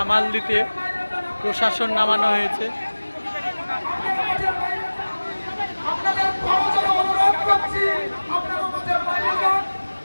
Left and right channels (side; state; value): both; inverted; correlation -1.00